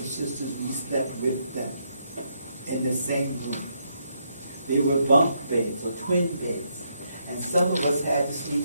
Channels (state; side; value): inverted; both; correlation -0.77